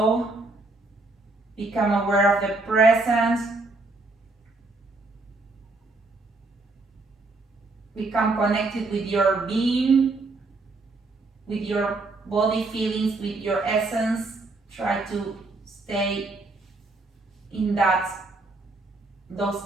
Become aware of the present. Become connected with your being, with your body feelings, with your essence. Try to stay in those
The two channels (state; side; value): quieter; left; 3.3 dB